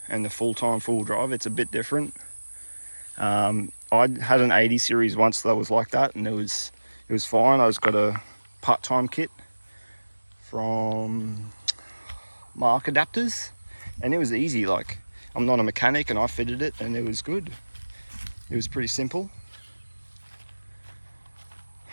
and the full-time full drive, it's a bit different. I had an 80 series once that was like that, and it was fine. I just got a part-time kit from Mark Adapters, and it was easy. Like, I'm not a mechanic and I fitted it and it was good. It was pretty simple.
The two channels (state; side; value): inverted; both; correlation -1.00